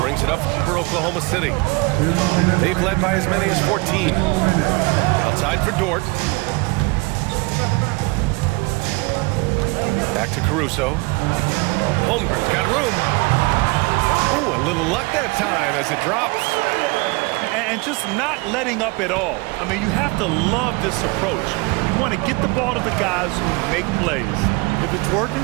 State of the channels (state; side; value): quieter; left; 26.3 dB